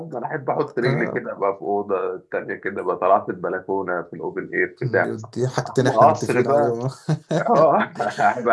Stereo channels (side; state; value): both; identical; correlation 1.00